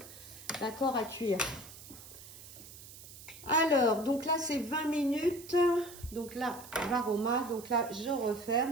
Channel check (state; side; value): noise; right; hiss, 16 dB below the sound